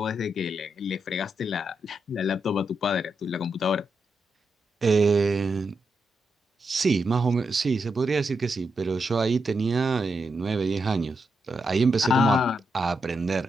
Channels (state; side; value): normal; both; correlation 0.84